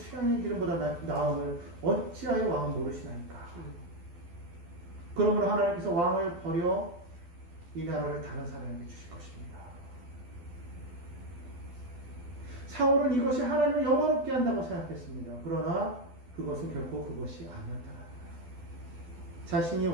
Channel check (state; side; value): late; left; 12 ms